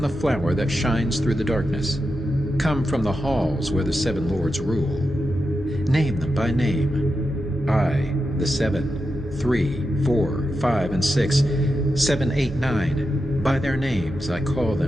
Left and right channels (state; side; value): normal; both; correlation 0.88